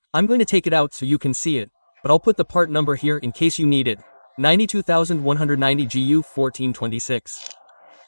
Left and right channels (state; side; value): inverted; both; correlation -1.00